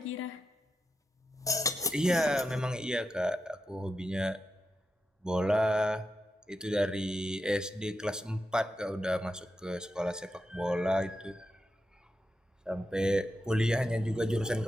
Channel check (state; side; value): normal; both; correlation 0.88